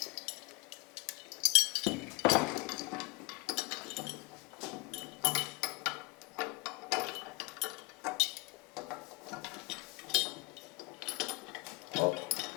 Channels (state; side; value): quieter; right; 24.4 dB